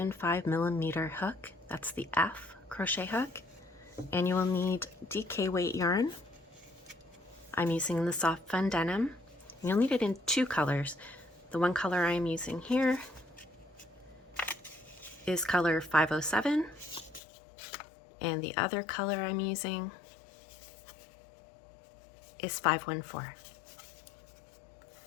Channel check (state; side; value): drops out; right; at 17.2 s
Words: millimeter hook, that's the F crochet hook, and you will need DK weight yarn. I'm using the soft fun denim. You'll need it in two colors. The one color I'm using here is color 507, and the other color I'm using is 514.